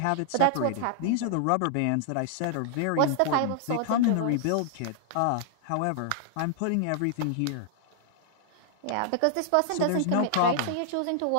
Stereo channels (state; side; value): different; both; correlation -0.01